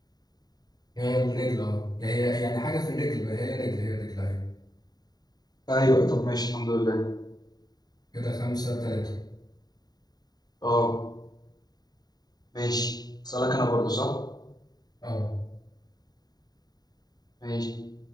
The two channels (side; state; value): right; late; 0.19 ms